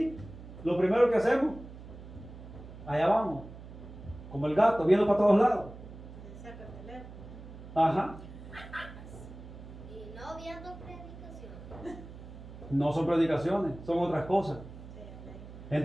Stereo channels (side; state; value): right; noise; hum, 14 dB below the sound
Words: lo primero que hacemos, allá vamos, como el gato, viendo para todos lados. Saca el teléfono. Ajá. Y no viendo predicación. No son predicaciones, son otras cosas. Sí, amén.